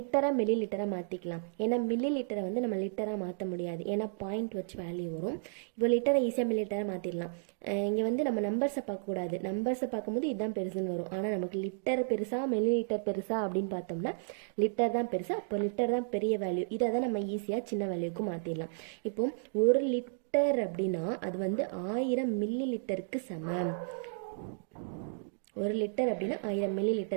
மில்லி லிட்டராக மாற்றிக்கலாம். ஏன்னா மில்லி லிட்டரை வந்து நம்ம லிட்டராக மாற்ற முடியாது, ஏன்னா பாயிண்ட் வச்சு வேல்யூ வரும். இப்போ லிட்டரை ஈஸியாக மில்லி லிட்டராக மாற்றிடலாம். இங்கே வந்து நம்ம நம்பர்ஸை பார்க்கக்கூடாது, நம்பர்ஸை பார்க்கும்போது இதுதான் பெருசுன்னு வரும். ஆனால் நமக்கு லிட்டர் பெருசா மில்லி லிட்டர் பெருசா அப்படின்னு பார்த்தோம்னா லிட்டர் தான் பெருசா, அப்போ லிட்டர் தான் பெரிய வேல்யூ. இதை தான் நம்ம ஈஸியாக சின்ன வேல்யூக்கு மாற்றிடலாம். இப்போ 1 லிட்டர் அப்படின்னா அது வந்து 1000 மில்லி லிட்டருக்கு சமம். 1 லிட்டர் அப்படின்னா 1000 மில்லி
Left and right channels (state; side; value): silent; left; digital silence